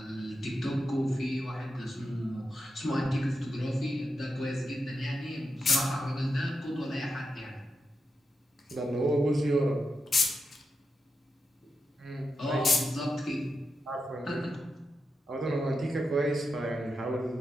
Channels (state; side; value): normal; both; correlation 0.87